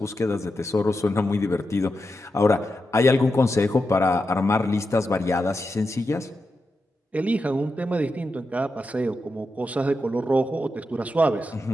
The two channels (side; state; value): both; normal; correlation 0.88